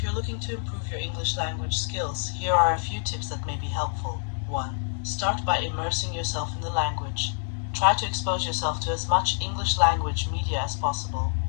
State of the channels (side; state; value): right; silent; digital silence